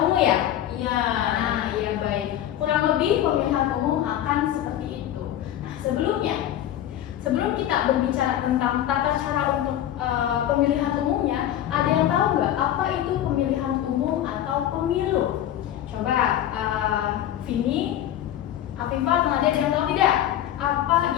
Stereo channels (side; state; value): right; quieter; 11.7 dB